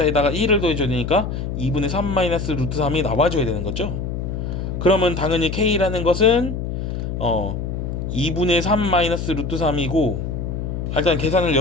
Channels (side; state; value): left; noise; hum, 4 dB below the sound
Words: 1을 더해줘야 되니까 2분의 3 마이너스 루트 3이 나와줘야 되는 거죠. 그러면 당연히 k라는 것은 2분의 3 마이너스 루트 3이고, 일단 계산을